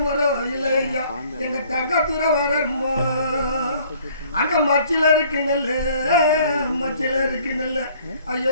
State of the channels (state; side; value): inverted; both; correlation -0.57